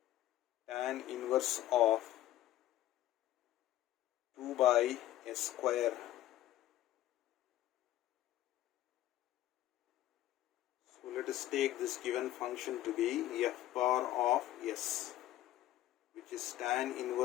tan inverse of 2 by s square. So let us take this given function to be f bar of s, which is tan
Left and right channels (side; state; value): right; quieter; 13.9 dB